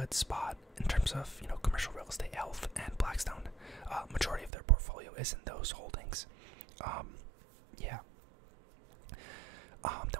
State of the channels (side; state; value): left; drops out; at 4.5 s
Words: spot in terms of commercial real estate health. And Blackstone, majority of their portfolio is in those holdings. Yeah.